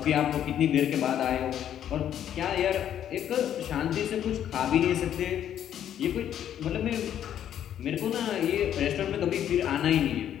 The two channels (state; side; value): quieter; right; 10.2 dB